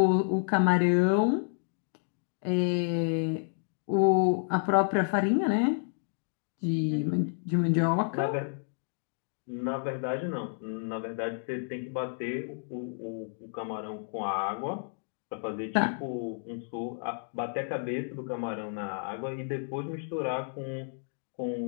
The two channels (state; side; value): silent; right; digital silence